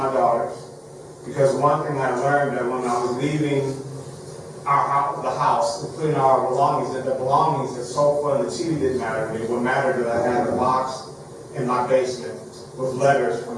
daughters, because one thing I learned that when I was leaving the house, including our belongings, that the belongings, the sofa and the TV didn't matter to me. What mattered is I had a box in my basement with letters from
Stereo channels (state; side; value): identical; both; correlation 1.00